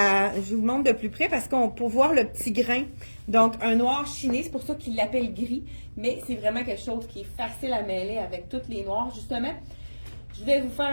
je vous montre de plus près parce qu'on peut voir le petit grain. Donc, un noir chiné, c'est pour ça qu'il l'appelle gris, mais c'est vraiment quelque chose qui est facile à mêler avec toutes les noirs. Justement, je vais vous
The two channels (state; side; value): inverted; both; correlation -1.00